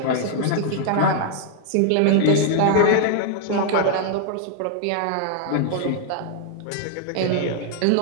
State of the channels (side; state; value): both; different; correlation 0.00